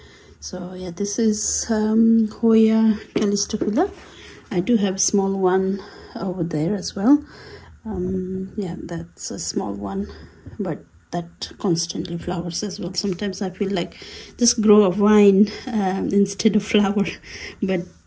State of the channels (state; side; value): identical; both; correlation 1.00